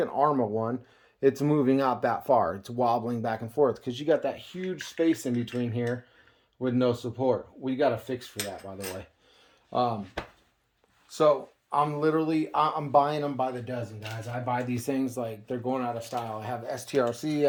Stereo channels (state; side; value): identical; both; correlation 1.00